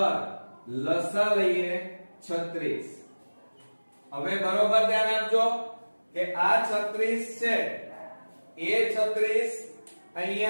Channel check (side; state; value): both; inverted; correlation -1.00